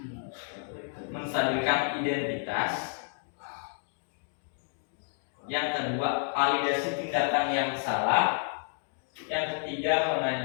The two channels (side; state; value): right; silent; 57 dB below the other